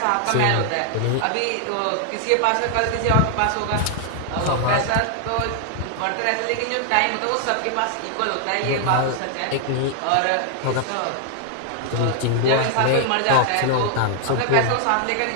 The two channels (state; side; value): different; both; correlation 0.00